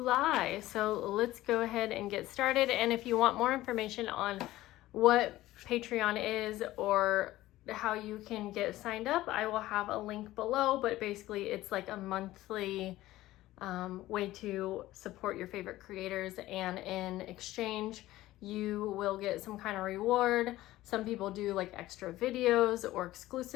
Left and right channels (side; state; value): right; quieter; 16.3 dB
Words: So let's go ahead and get started. And if you want more information on what Patreon is or how you can get signed up, I will have a link below, but basically it's like a monthly way to support your favorite creators, and in exchange you will get some kind of reward. Some people do like extra videos or